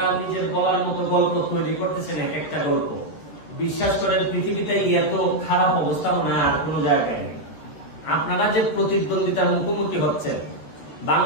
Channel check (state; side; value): late; right; 13 ms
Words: নিজের বলার মতো গল্প তৈরি করতেছেন, এক একটা গল্প, বিশ্বাস করেন পৃথিবীতে এত খারাপ অবস্থা মনে হয় আর কোন জায়গায় নেই। আপনারা যে প্রতিদ্বন্দ্বিতার মুখোমুখি হচ্ছেন,